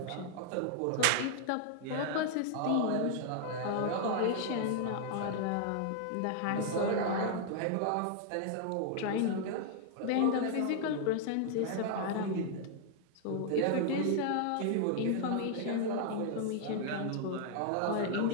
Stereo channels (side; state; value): both; different; correlation 0.00